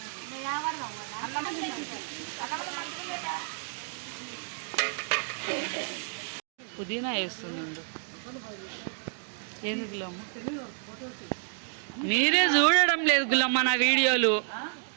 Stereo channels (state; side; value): silent; left; 58 dB below the other